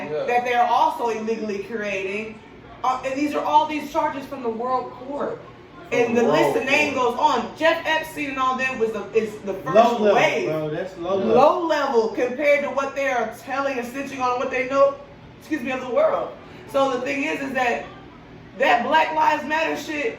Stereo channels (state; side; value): identical; both; correlation 1.00